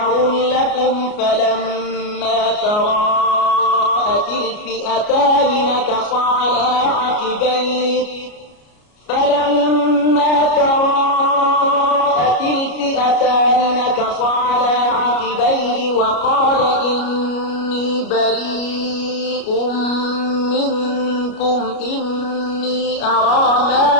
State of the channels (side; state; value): right; late; 33 ms